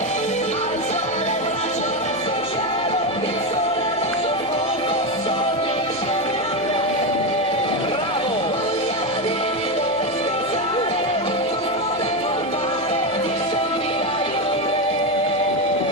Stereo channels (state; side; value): noise; right; hum, 25 dB below the sound